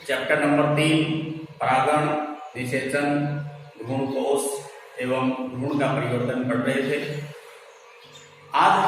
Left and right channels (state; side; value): identical; both; correlation 1.00